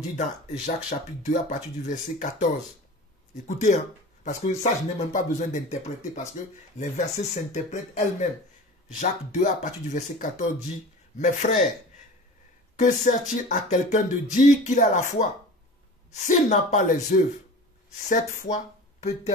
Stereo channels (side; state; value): both; normal; correlation 0.37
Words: dans Jacques chapitre 2 à partir du verset 14. Écoutez, hein, parce que ça, je n'ai même pas besoin d'interpréter, parce que les versets s'interprètent elles-mêmes. Jacques 2 à partir du verset 14 dit, « Mes frères, que sert-il à quelqu'un de dire qu'il a la foi? S'il n'a pas les œuvres, cette foi